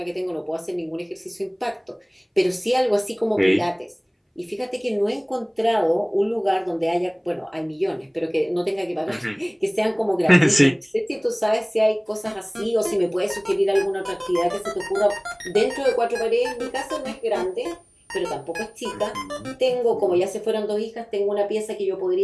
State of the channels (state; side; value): identical; both; correlation 1.00